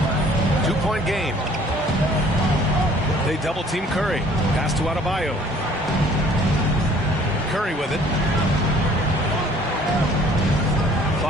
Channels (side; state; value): both; normal; correlation 0.55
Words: 2-point game. They double team Curry. Pass to Adebayo. Curry with it.